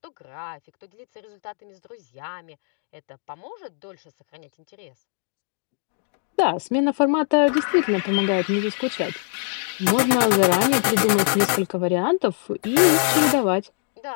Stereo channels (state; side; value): silent; right; 60 dB below the other